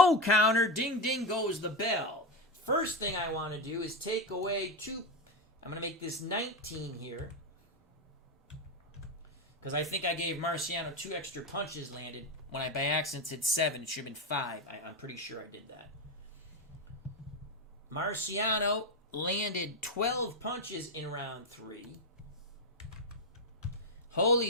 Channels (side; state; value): both; normal; correlation 0.12